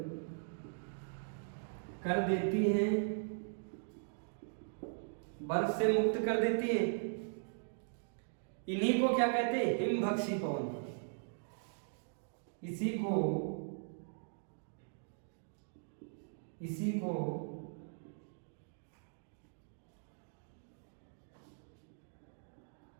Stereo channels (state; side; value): silent; left; digital silence